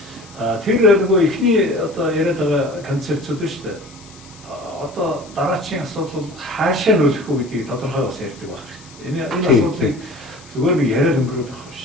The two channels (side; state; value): left; noise; hiss, 22 dB below the sound